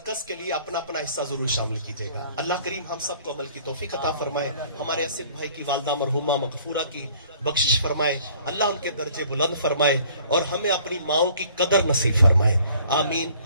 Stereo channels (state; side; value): inverted; both; correlation -0.55